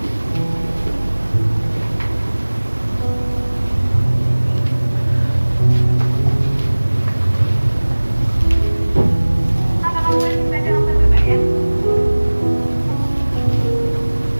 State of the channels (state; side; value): inverted; both; correlation -1.00